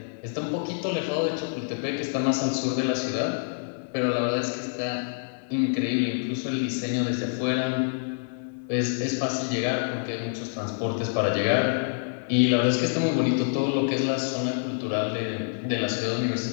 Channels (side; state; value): right; silent; 60 dB below the other